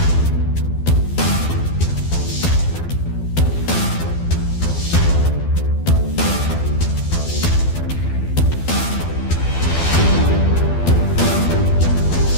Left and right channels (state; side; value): late; right; 12 ms